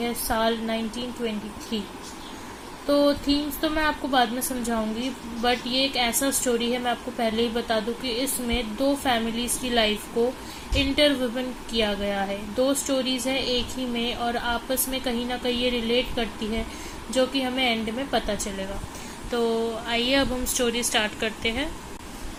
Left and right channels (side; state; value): both; identical; correlation 1.00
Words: साल 1923। तो थीम्स तो मैं आपको बाद में समझाऊंगी, बट ये एक ऐसा स्टोरी है, मैं आपको पहले ही बता दूं कि इसमें दो फैमिलीज की लाइफ को इंटरविवन किया गया है। दो स्टोरीज है एक ही में और आपस में कहीं ना कहीं ये रिलेट करती है, जो कि हमें एंड में पता चलेगा। तो आइए अब हम स्टोरी स्टार्ट करते हैं।